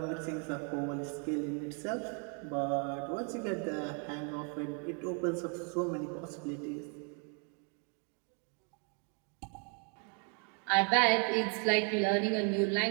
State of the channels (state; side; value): quieter; left; 38.7 dB